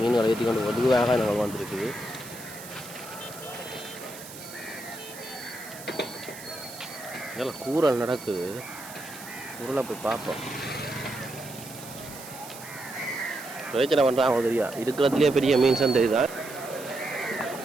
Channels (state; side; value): noise; right; hiss, 14 dB below the sound